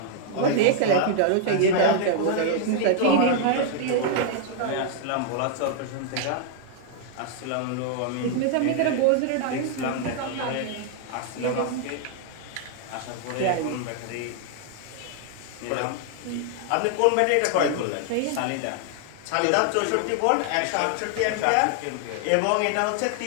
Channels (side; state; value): both; different; correlation 0.00